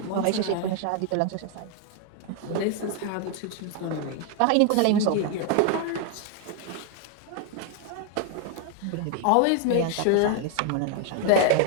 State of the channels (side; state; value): both; different; correlation 0.01